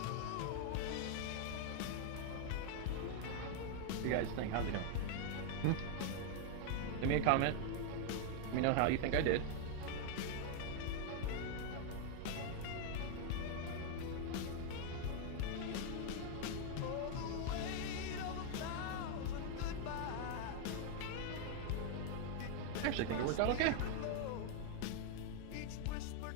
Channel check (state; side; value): different; both; correlation 0.00